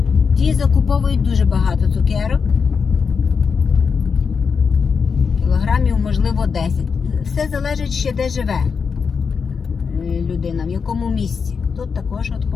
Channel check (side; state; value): right; quieter; 5.7 dB